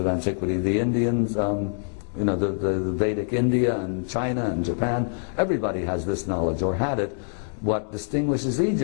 antiquity, the Indians, the Vedic India and China and Japan, everybody has this knowledge, or had it. What distinguishes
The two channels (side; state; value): right; silent; 62 dB below the other